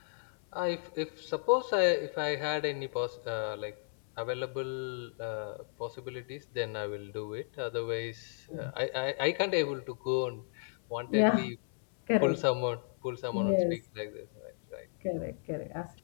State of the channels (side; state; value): right; silent; 55 dB below the other